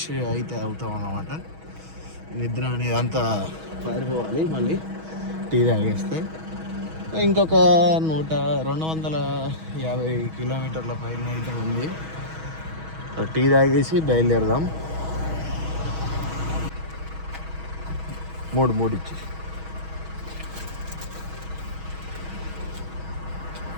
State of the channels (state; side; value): late; left; 6.3 ms